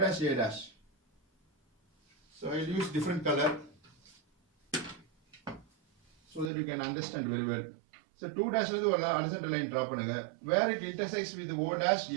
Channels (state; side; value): drops out; left; at 6.5 s